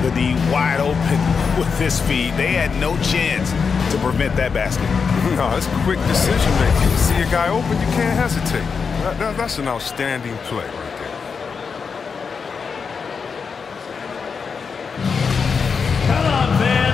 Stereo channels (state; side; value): quieter; right; 5.6 dB